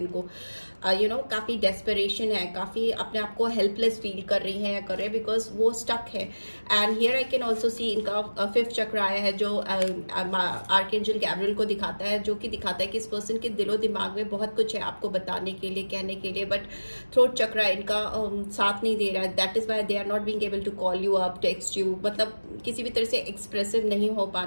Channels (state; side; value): inverted; both; correlation -1.00